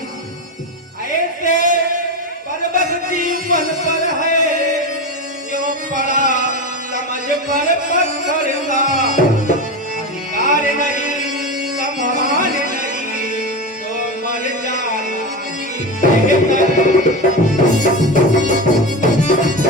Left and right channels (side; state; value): both; normal; correlation 0.20